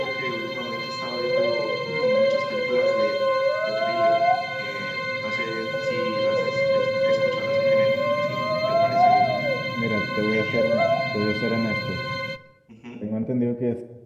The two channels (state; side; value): identical; both; correlation 1.00